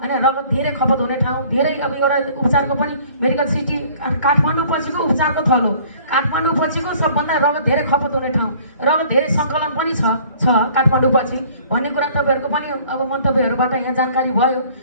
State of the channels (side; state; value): both; inverted; correlation -0.54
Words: रगत धेरै खपत हुने ठाउँ, धेरै अब एउटा उपचारको पनि मेडिकल सिटी काठमाडौँ पछिको उपचारको थलो हो। काठमाडौँ पछिको सबभन्दा रगत धेरै खपत हुने ठाउँ, रगत धेरै सङ्कलन पनि छ काठमाडौँ पछि भन्ने कुरा तपाईँहरूको पनि अब मन्तव्यहरूबाट यहाँ जानकारी भयो।